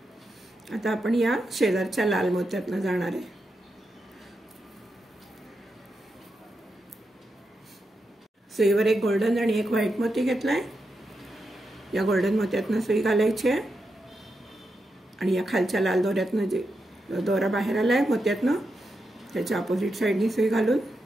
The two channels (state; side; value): normal; both; correlation 0.86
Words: आता आपण या शेजारच्या लाल मोत्यातनं जाणार आहे. सुईवर एक गोल्डन आणि एक व्हाईट मोती घेतलाय. या गोल्डन मोत्यातनं सुई घालायची आहे आणि या खालच्या लाल दोऱ्यातनं जे दोरा बाहेर आलाय मोत्यातनं त्याच्या अपोजिट साईडनी सुई घालून